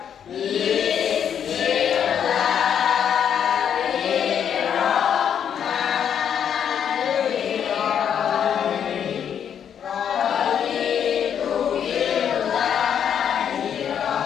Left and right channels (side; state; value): right; quieter; 8.5 dB